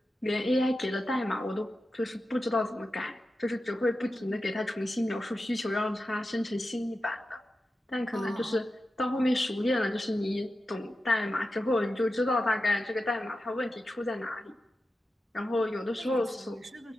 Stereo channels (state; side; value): normal; both; correlation 0.92